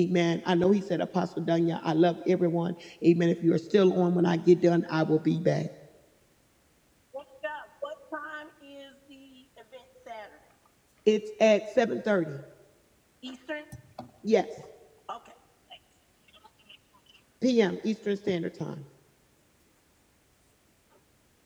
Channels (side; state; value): both; identical; correlation 1.00